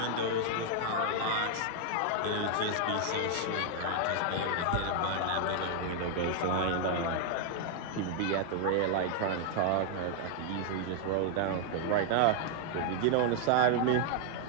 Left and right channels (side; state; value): both; different; correlation 0.00